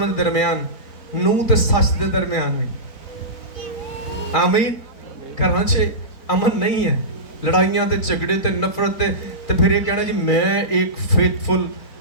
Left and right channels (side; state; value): right; late; 4.4 ms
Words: دے درمیان، نوح تے سچ دے درمیان میں۔ آمین۔ گھراں چ امن نہیں ہے، لڑائیاں تے جھگڑے تے نفرت تے پھر یہ کہنا جی میں ایک فیتھفل